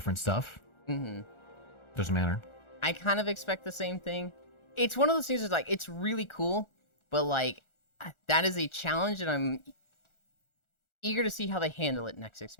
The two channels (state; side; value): late; right; 1.4 ms